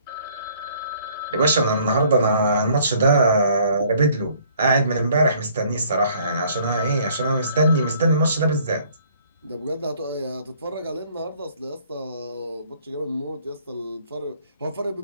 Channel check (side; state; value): both; inverted; correlation -0.60